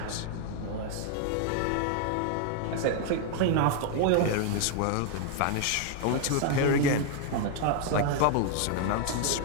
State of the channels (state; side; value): different; both; correlation 0.00